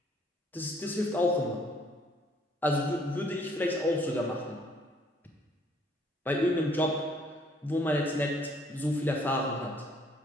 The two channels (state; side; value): normal; both; correlation 0.62